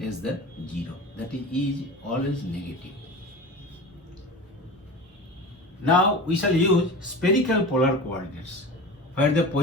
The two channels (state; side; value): normal; both; correlation 0.33